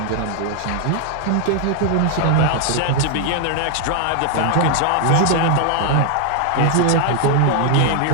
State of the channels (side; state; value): both; different; correlation 0.00